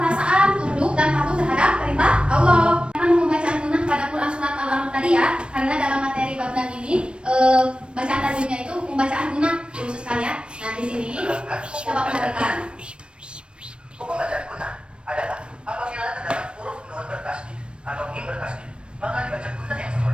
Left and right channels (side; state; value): left; late; 0.057 ms